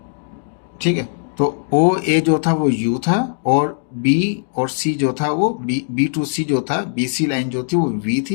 ठीक है, तो ओ ए जो था वो यू था, और बी और सी जो था वो बी टू सी जो था, बी सी लाइन जो थी वो वी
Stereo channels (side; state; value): right; silent; digital silence